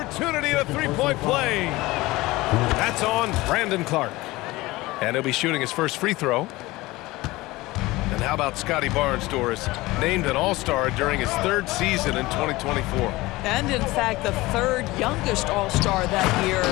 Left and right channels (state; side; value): quieter; right; 20.0 dB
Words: a three-point play. That's on Brandon Clark. And he'll be shooting his first free throw. And how about Scotty Barnes, Doris? Named an All-Star during his third season in 2024. And in fact, the third youngest All-Star that year.